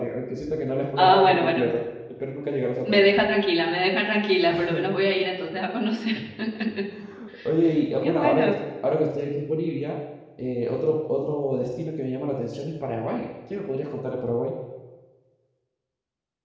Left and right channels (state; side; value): identical; both; correlation 1.00